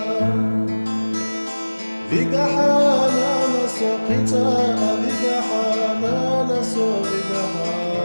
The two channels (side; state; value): both; inverted; correlation -1.00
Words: Vigahana naso kita Vigahana naso